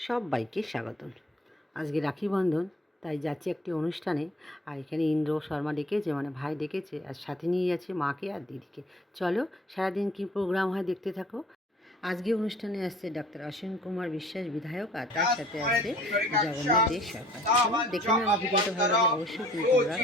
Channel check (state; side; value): normal; both; correlation 0.54